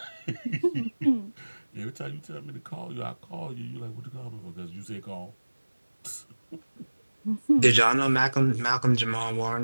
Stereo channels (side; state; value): both; inverted; correlation -1.00